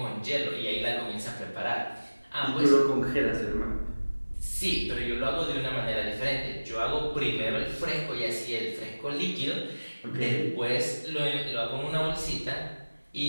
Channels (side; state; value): both; inverted; correlation -1.00